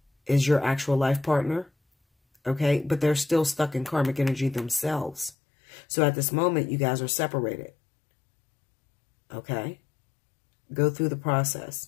is your actual life partner. Okay? But they're still stuck in karmic energy themselves. So at this moment, you guys are separated. Okay? Go through the process.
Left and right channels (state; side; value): drops out; right; at 5.4 s